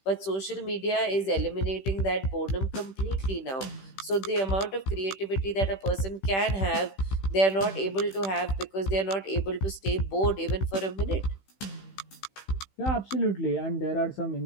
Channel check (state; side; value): late; right; 15 ms